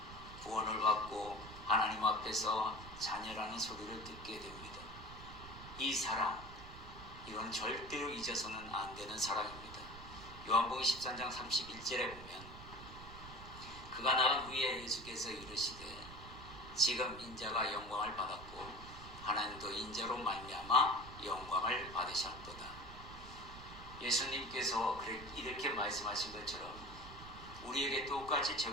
구원을 받고 하나님 앞에서 자녀라는 소리를 듣게 됩니다. 이 사랑, 이건 절대로 잊어서는 안 되는 사랑입니다. 요한복음 13장 31절에 보면 그가 나간 후에 예수께서 이르시되 지금 인자가 영광을 받았고 하나님도 인자로 말미암아 영광을 받으셨도다. 예수님께서 이렇게 말씀하신 것처럼 우리에게 똑같이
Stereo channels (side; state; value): right; noise; rumble, 14 dB below the sound